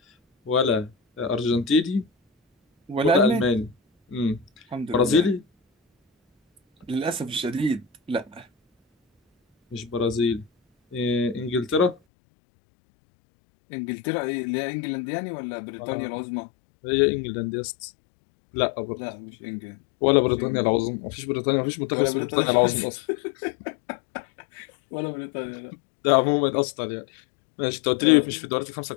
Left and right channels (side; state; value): right; drops out; at 12.0 s